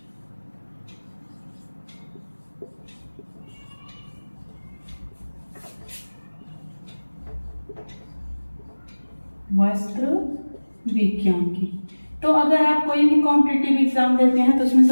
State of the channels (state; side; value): inverted; both; correlation -1.00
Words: वस्त्र विज्ञान की। तो अगर आप कोई भी कॉम्पिटिटिव एग्जाम देते हैं तो उसमें